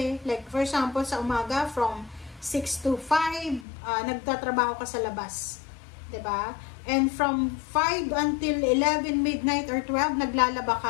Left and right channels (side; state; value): right; drops out; at 3.7 s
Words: Like, for example, sa umaga, from 6 to 5, nagtatrabaho ka sa labas. Diba? And from 5 until 11, midnight or 12, naglalaba